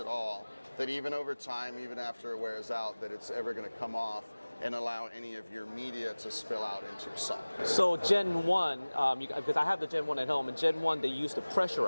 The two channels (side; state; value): both; inverted; correlation -1.00